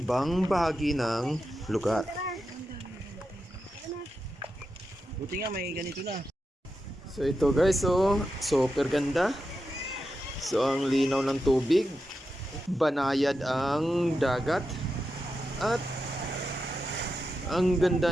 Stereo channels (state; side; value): normal; both; correlation 0.88